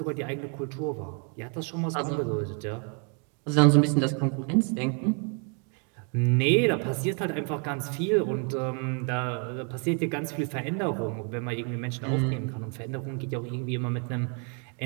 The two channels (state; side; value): quieter; left; 39.4 dB